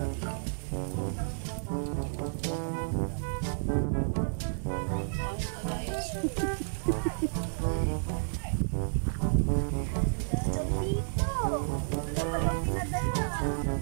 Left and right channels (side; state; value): left; silent; digital silence